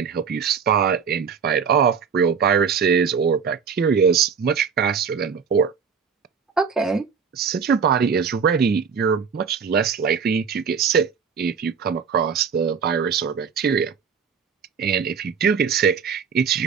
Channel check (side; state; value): left; quieter; 6.3 dB